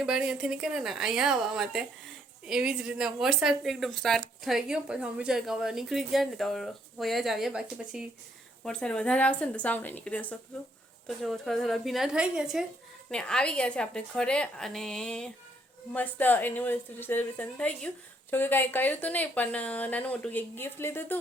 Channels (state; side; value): normal; both; correlation 0.69